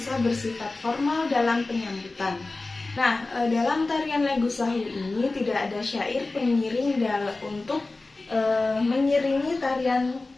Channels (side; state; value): right; quieter; 3.3 dB